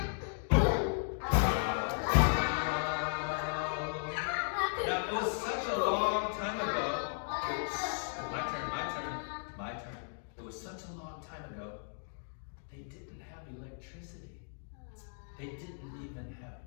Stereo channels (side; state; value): right; silent; digital silence